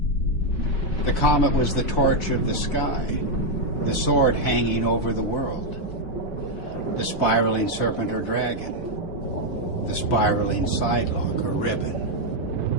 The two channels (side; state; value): right; late; 5.4 ms